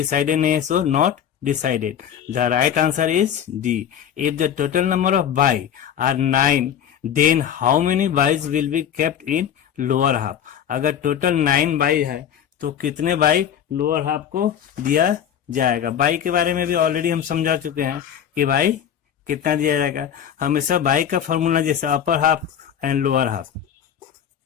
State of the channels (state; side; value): quieter; right; 9.2 dB